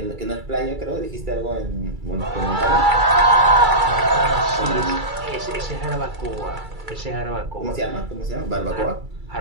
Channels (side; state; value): left; late; 2.3 ms